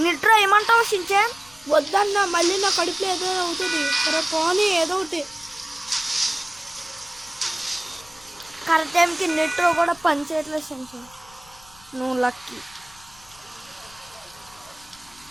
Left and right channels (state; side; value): noise; left; rumble, 26 dB below the sound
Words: నిట్రా ఏమంటావు షించాన్? వద్దన్నా, మళ్ళీ నా కడుపులో ఏదో అవుతుంది. సరే పోనీ ఏదో ఒకటి. కరెక్ట్ టైంకి నిట్రో కూడా పని చేయట్లేదు షించాన్. నువ్వు లక్కీ.